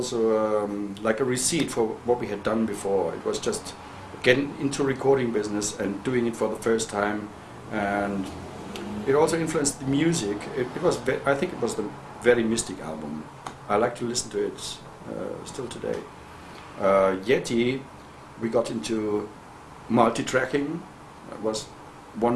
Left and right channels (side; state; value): both; identical; correlation 1.00